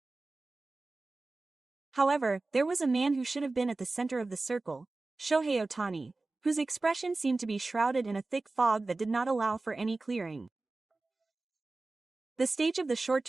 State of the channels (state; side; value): quieter; left; 3.4 dB